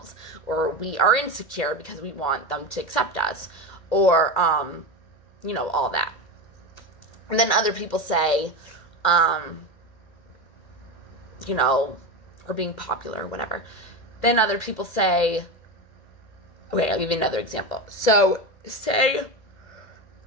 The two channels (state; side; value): late; right; 2.1 ms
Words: or we are insecure because we want them to accept us, or, all that. And then other people say, or being popular or whatever. Then other people say, okay, I'll give you another example. So, say,